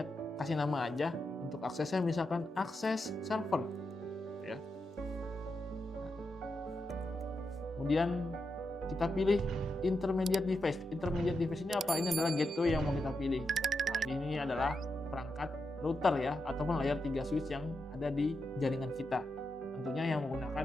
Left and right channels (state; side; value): normal; both; correlation 0.86